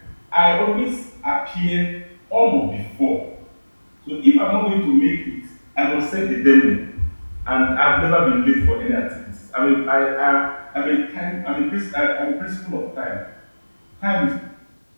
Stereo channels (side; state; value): both; inverted; correlation -1.00